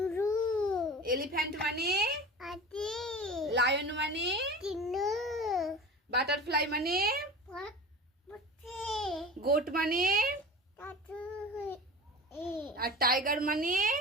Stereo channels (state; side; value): normal; both; correlation 0.33